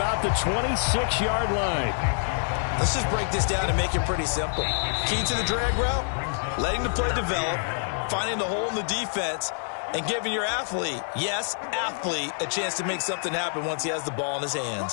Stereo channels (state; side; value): silent; right; digital silence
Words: the 26-yard line. Let's just break this down and make it pretty simple. Key to the drag route, letting the play develop, finding the hole in the defense, and giving your athlete, yes, athlete, a chance to make something happen once he has the ball in his